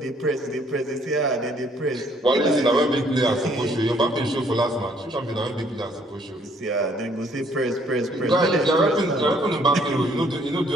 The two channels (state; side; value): normal; both; correlation 0.64